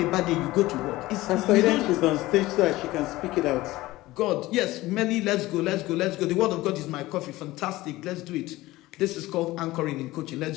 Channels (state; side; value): quieter; right; 18.2 dB